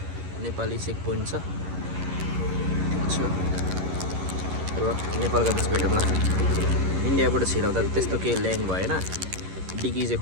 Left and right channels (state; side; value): late; left; 11 ms